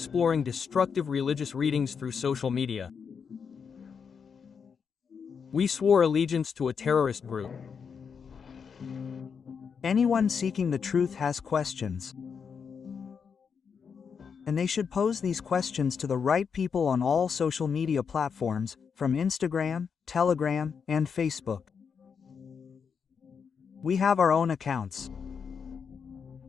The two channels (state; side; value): quieter; right; 6.4 dB